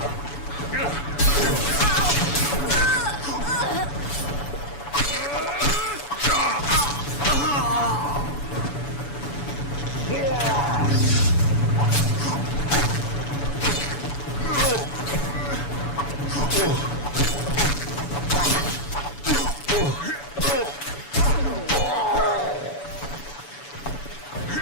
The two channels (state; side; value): late; right; 7.0 ms